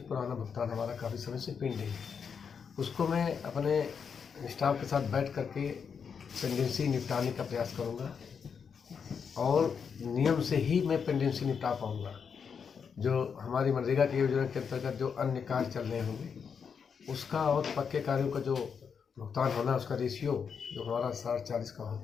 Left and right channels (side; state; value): right; quieter; 6.5 dB